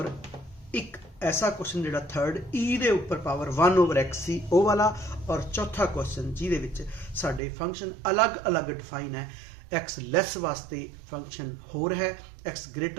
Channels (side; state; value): left; drops out; at 7.4 s